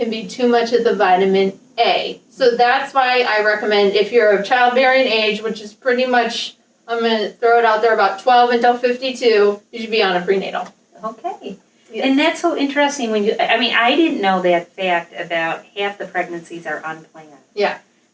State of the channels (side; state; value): both; identical; correlation 1.00